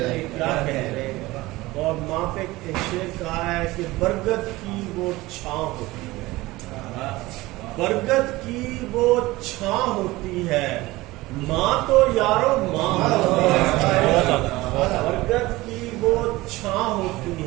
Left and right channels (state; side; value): quieter; left; 19.6 dB